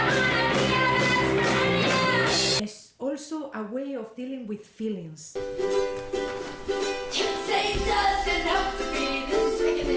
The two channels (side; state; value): both; identical; correlation 1.00